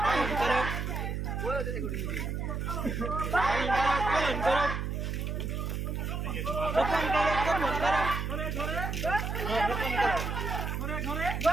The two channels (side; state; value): right; noise; hum, 2 dB below the sound